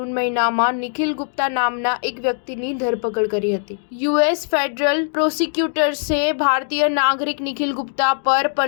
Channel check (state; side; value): silent; right; digital silence